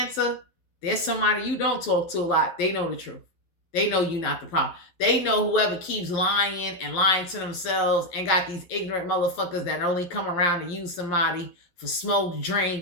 there's somebody you don't talk to a lot. They know the truth. They know you not the problem. They know whoever keeps lying and lying to themselves and got these ignorant motherfuckers that only come around to use somebody for smoke,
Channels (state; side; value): late; right; 11 ms